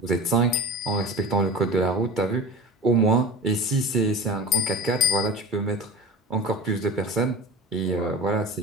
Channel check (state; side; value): normal; both; correlation 0.33